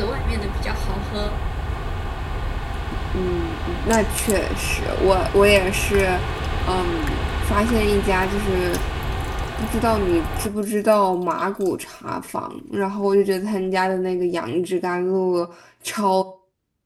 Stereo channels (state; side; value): identical; both; correlation 1.00